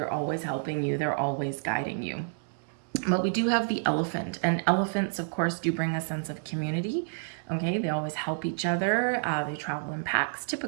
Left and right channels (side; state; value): left; silent; 58 dB below the other